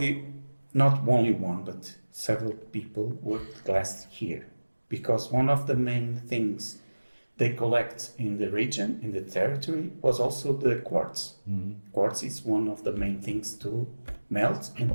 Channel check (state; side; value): inverted; both; correlation -1.00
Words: not only one, but several people worked glass here, because one of the main things they collect in the region, in the territory, was also the quartz. Quartz is one of the main things to melt and